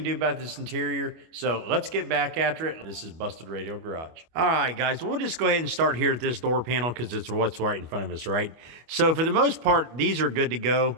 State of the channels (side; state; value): left; late; 25 ms